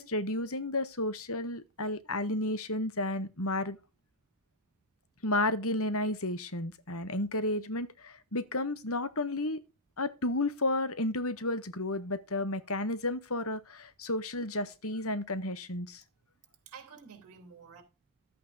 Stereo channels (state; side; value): normal; both; correlation -0.10